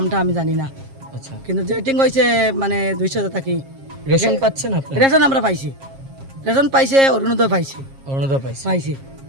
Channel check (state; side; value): late; left; 7.4 ms